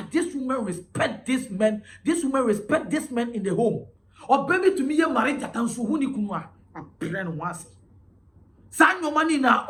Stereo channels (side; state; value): both; identical; correlation 1.00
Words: this woman respect this man. This woman respect this man in the home. Or baby to me, you married that and so who ni kunwa a brand once. Sign your money now,